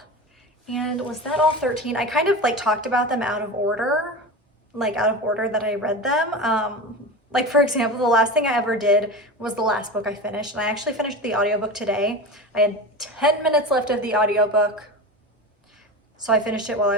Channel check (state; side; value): normal; both; correlation 0.27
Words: And was that all 13? I kind of like talked about them out of order, that I read them. Like for example, the last thing I ever did was the last book I finished, and I actually finished the audiobook today. I had 10 minutes left of the audiobook, so I finished it while